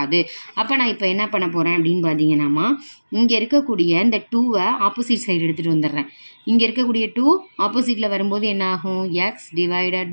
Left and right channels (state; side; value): inverted; both; correlation -1.00